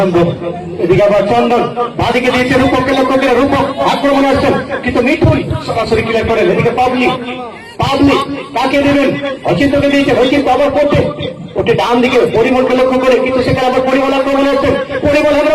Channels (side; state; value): both; identical; correlation 1.00